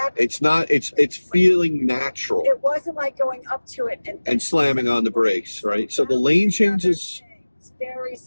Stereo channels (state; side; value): inverted; both; correlation -1.00